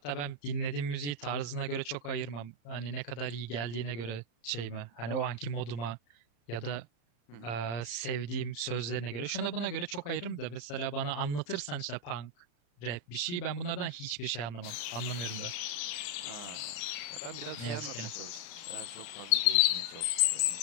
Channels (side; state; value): right; late; 34 ms